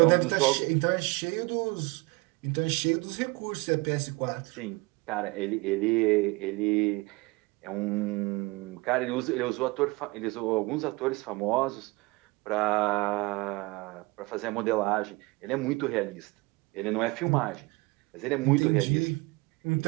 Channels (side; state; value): left; quieter; 24.6 dB